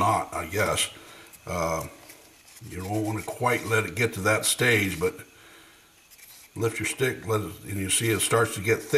I guess. You don't want to quite let it get to that stage, but lift your stick, and you see it starts to get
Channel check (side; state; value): both; identical; correlation 1.00